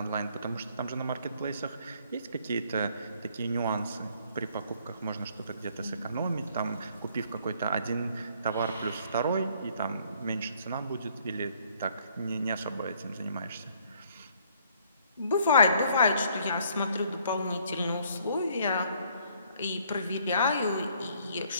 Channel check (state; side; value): inverted; both; correlation -0.63